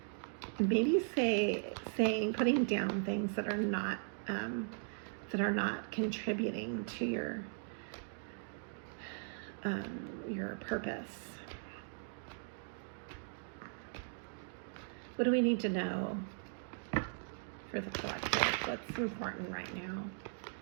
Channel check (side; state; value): left; silent; digital silence